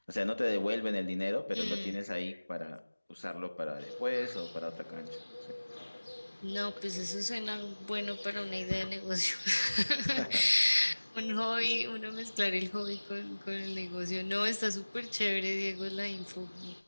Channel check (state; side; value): inverted; both; correlation -1.00